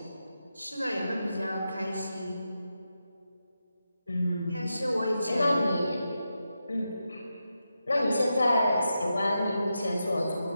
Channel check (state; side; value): inverted; both; correlation -0.88